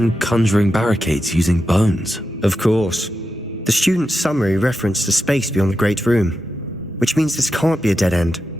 conjuring barricades using bones. Of course. The student's summary referenced a space beyond the Great Room, which means this can't be a dead end.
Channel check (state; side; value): normal; both; correlation 0.88